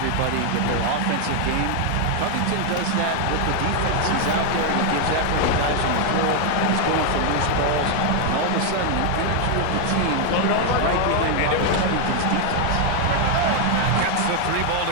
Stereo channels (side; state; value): both; different; correlation 0.01